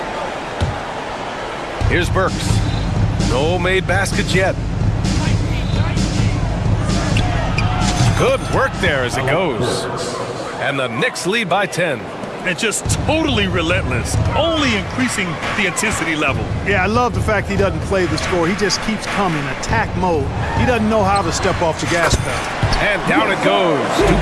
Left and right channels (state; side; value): identical; both; correlation 1.00